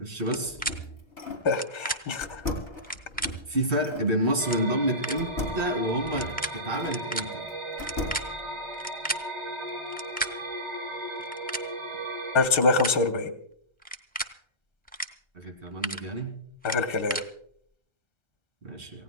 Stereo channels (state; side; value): late; right; 1.3 ms